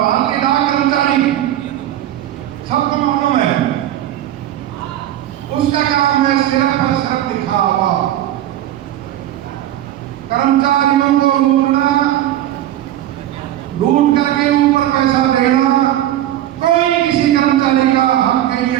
डाक कर्मचारी सबको मालूम है, उसका काम है सिर्फ और सिर्फ दिखावा, कर्मचारियों को लूट करके ऊपर पैसा देना। कोई किसी कर्मचारी का हक के लिए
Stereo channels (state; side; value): quieter; left; 12.7 dB